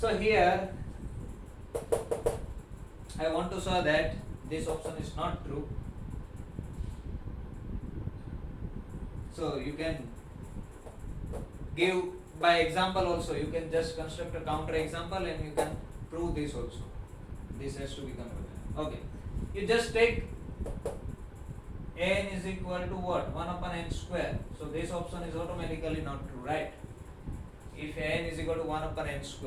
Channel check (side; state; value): both; identical; correlation 1.00